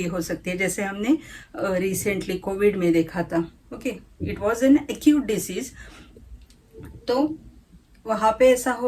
हो सकती है, जैसे हमने रिसेंटली कोविड में देखा था, okay, it was an acute disease. तो वहाँ पे ऐसा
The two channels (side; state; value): both; identical; correlation 1.00